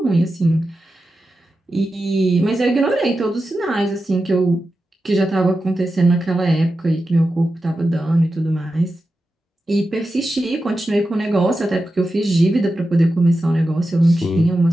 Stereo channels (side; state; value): both; normal; correlation 0.91